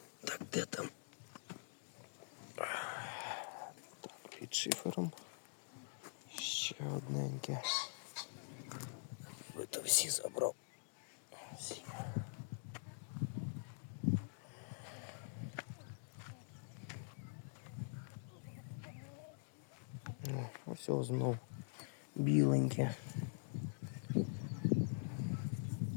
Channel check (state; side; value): silent; right; digital silence